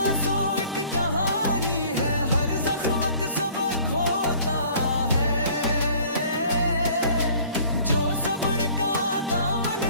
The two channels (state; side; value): inverted; both; correlation -0.53